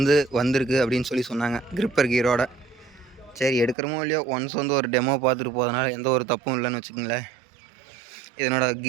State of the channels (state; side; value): drops out; left; at 3.8 s